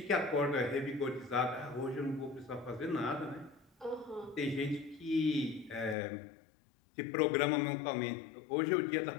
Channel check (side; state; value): right; drops out; at 6.0 s